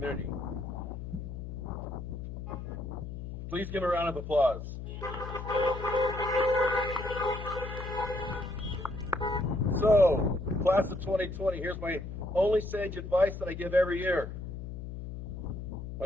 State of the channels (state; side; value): noise; left; hum, 8 dB below the sound